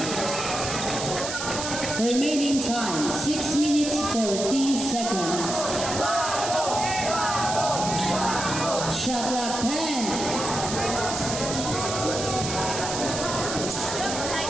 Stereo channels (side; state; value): right; noise; hiss, 5 dB below the sound